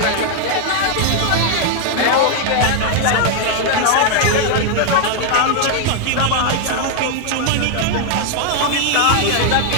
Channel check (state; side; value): different; both; correlation 0.00